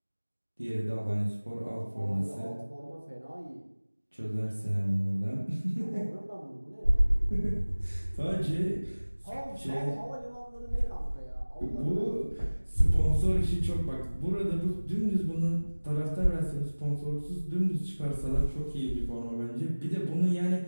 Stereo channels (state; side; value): inverted; both; correlation -1.00